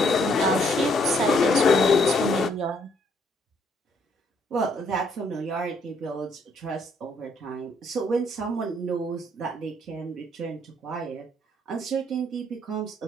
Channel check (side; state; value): both; normal; correlation 0.68